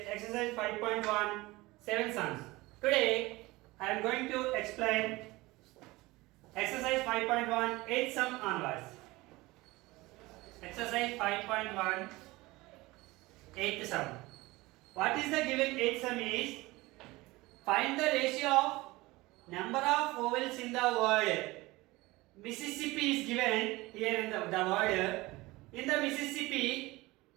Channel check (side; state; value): left; quieter; 20.8 dB